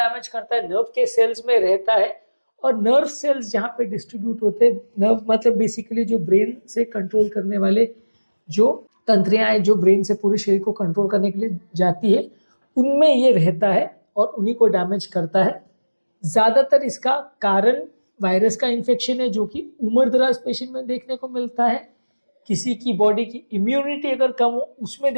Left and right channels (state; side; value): inverted; both; correlation -1.00